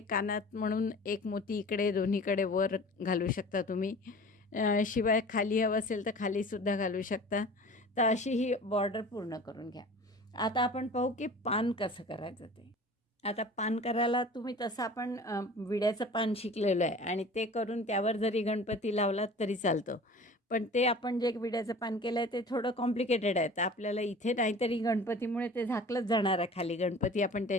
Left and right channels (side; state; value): both; normal; correlation 0.42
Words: कानात म्हणून एक मोती इकडे दोन्हीकडे वर घालू शकता तुम्ही. शिवाय खाली हवं असेल तर खालीसुद्धा घालू शकता. तर अशी ही बॉर्डर पूर्ण करून घ्या. आता आपण पाहू की पान कसं करायचं ते. आता पान करायला तुम्ही तसं आपण विड्याचं पान शिकलेलं आहे आणि ते करून त्यावर जरी गणपती लावलात तरी चालतं. पण ते आपण जे विड्याचं पान केलं आहे ते थोडं कॉम्प्लिकेटेड आहे. तर आपल्याला इथे नाहीतरी गणपतीमुळे ते झाकलंच जाणार आहे खाली. गणपती आपण